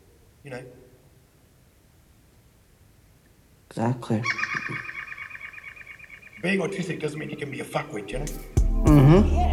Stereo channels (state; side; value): identical; both; correlation 1.00